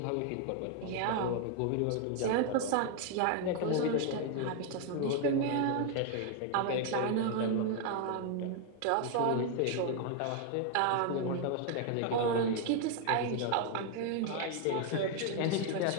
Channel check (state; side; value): different; both; correlation 0.00